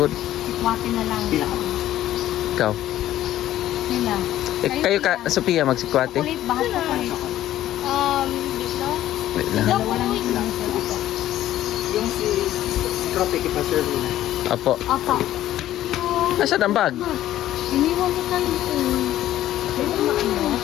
Ikwate na lang. Pila. Ikaw. Nila. Kayo ka, Sophia, magsikwate. Chocolate, bahat chocolate. Dito? Wait lang. Dalawa lang sila. Yung si cropek ipa-serve na. Apo. Apa. Asan ang bag? Iniwan ko lang ito. Dito maano.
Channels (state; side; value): quieter; right; 13.3 dB